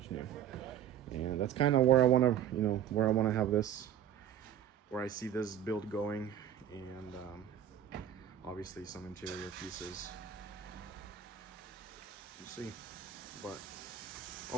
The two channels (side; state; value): left; quieter; 9.9 dB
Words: new, and that's kind of where I want to have this, where I see this build going, and obviously some interior pieces. We'll see, but